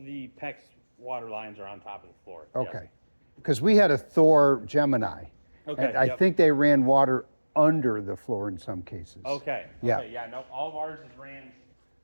PEX water lines are on top of the floor. yes. Okay. Because we had a Thor Gemini. Okay, And I yep. think they ran water under the floor in some cases. Okay. Yeah. Okay, yeah. No, all of ours is ran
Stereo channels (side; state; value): both; inverted; correlation -1.00